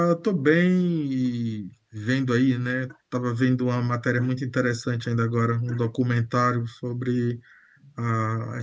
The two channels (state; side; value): identical; both; correlation 1.00